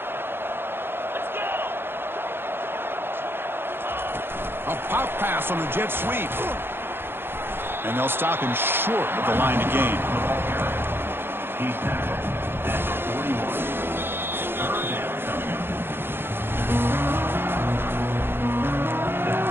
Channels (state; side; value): late; left; 0.10 ms